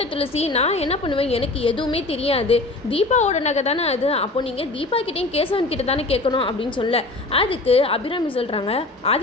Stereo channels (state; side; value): quieter; right; 3.1 dB